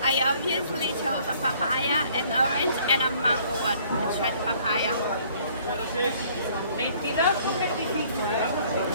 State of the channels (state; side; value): inverted; both; correlation -0.58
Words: I obviously chose a papaya, an orange, and a mango one. Let's try the papaya.